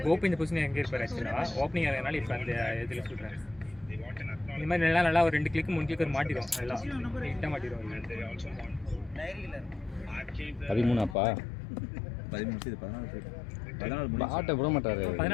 கோப்பு இந்த பொசிஷன் எங்கே இருப்பார் ஆக்சுவலாக ஓப்பனிங் ஆகிறதுனால இப்போ அந்த இதில் சொல்கிறேன். இந்த மாதிரி நல்லா ஒரு 2 கிளிக் 3 கிளிக் மாட்டிடும். நல்லா நீட்டாக மாட்டிடும். 13 அப்பா 13 இது 14 பேட்டை விட மாட்டாரு.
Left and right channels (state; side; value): drops out; right; at 11.2 s